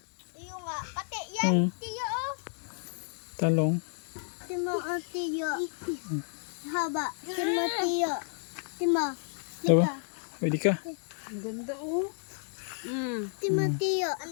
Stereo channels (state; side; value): silent; right; 57 dB below the other